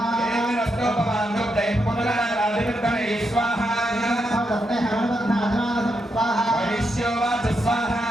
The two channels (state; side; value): normal; both; correlation 0.83